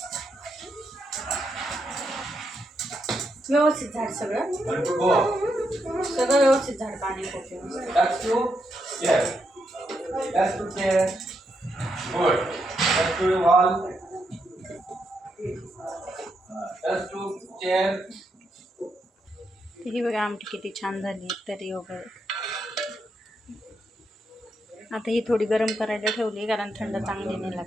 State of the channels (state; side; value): normal; both; correlation 0.81